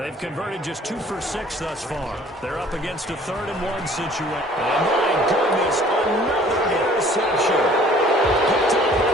converted just 2 for 6 thus far. They're up against a 3rd and 1 situation. And my goodness, another interception. Picked up by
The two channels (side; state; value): both; normal; correlation 0.53